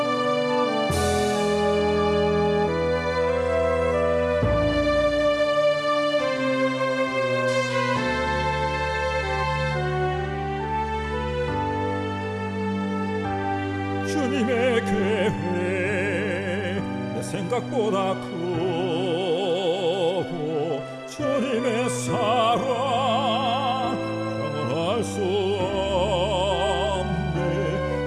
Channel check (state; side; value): identical; both; correlation 1.00